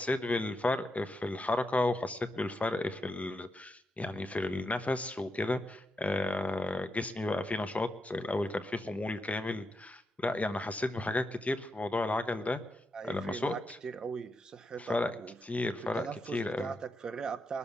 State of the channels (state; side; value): normal; both; correlation 0.84